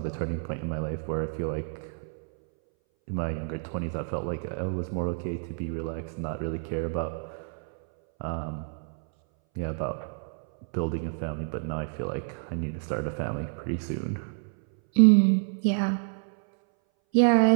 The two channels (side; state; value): left; silent; 59 dB below the other